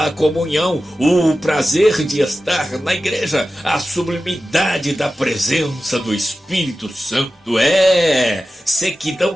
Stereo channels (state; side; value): normal; both; correlation 0.94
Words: comunhão, o prazer de estar na igreja, a sublimidade da presença do Espírito Santo. Sequidão